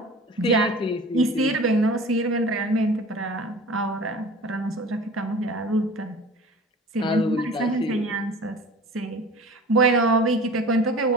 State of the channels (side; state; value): both; normal; correlation 0.40